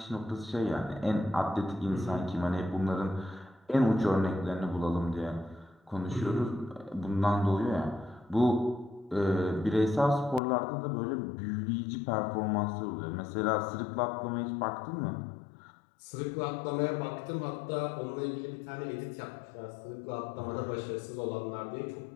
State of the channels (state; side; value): drops out; right; at 10.4 s